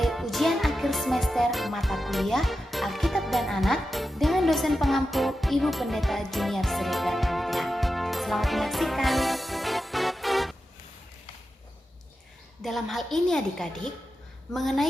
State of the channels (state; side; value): normal; both; correlation 0.91